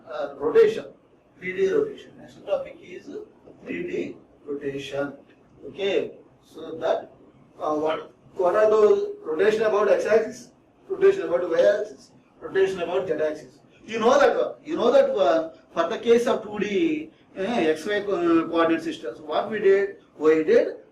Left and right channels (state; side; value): identical; both; correlation 1.00